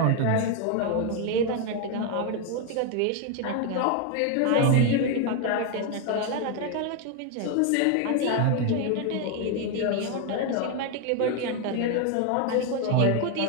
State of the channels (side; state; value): both; different; correlation 0.01